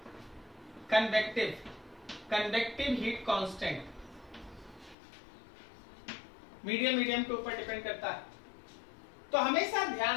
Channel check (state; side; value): drops out; right; at 5.0 s